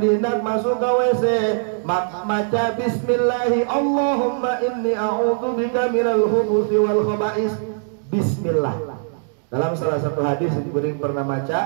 hendak masuk ke WC maka baca bismillah Allahumma inni a'udzu bika minal khubsi wal khaba'is bismillah dalam salah satu hadis yang pernah baca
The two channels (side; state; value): left; silent; digital silence